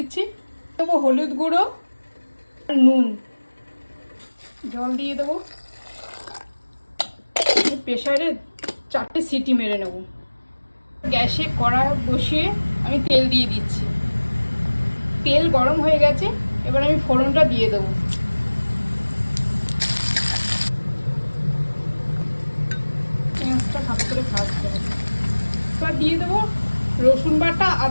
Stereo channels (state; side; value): inverted; both; correlation -1.00